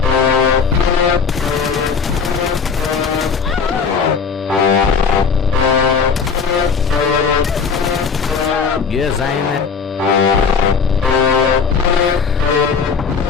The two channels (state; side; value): quieter; right; 5.8 dB